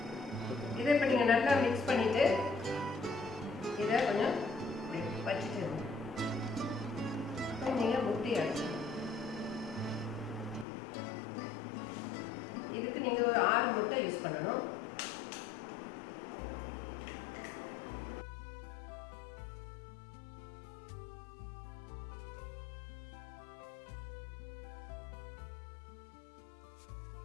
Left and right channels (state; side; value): drops out; right; at 10.7 s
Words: இதை இப்போ நீங்கள் நல்லா மிக்ஸ் பண்ணிவிட்டு இதை கொஞ்சம் வச்சுட்டு நீங்கள் முட்டி அடிச்சு இதுக்கு நீங்கள் ஒரு 6 முட்டை யூஸ் பண்ணணும்.